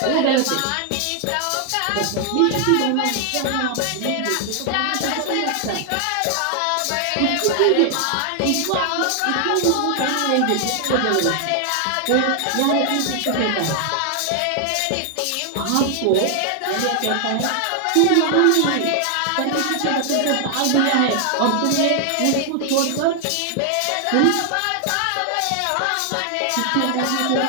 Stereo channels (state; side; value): different; both; correlation 0.00